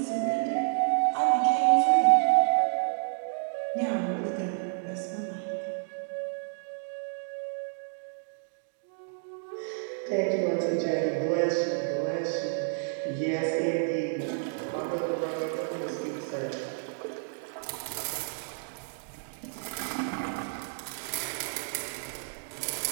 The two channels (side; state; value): left; silent; digital silence